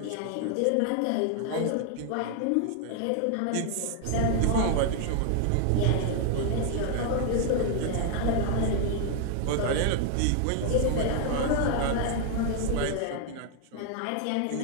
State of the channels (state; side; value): different; both; correlation 0.00